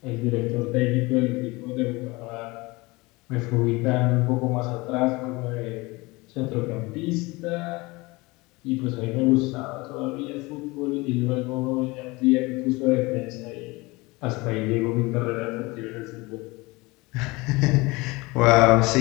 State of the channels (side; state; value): right; quieter; 23.5 dB